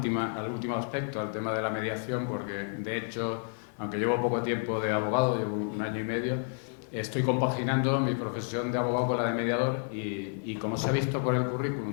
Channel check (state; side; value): silent; right; 58 dB below the other